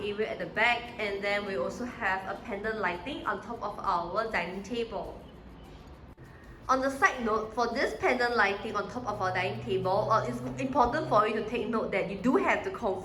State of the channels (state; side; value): identical; both; correlation 1.00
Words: at the back. And then we also have a pendant lighting on top of our dining table. On the side note, for this pendant lighting on top of our dining table, it's important for you to take note that you do have to